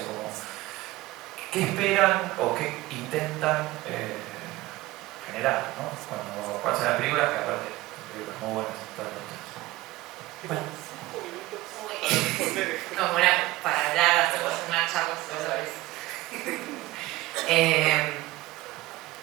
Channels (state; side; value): quieter; left; 18.5 dB